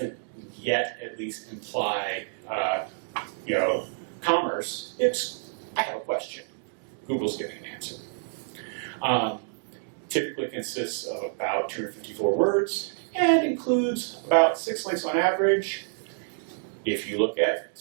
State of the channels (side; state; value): left; silent; digital silence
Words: yet, at least, imply, commerce. It's, I have a question. Google's giving an answer. Typically consists of about 254 words and includes about 6 links on average if you look at